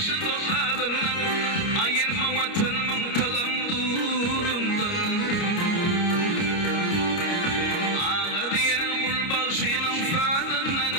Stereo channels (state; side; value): late; right; 29 ms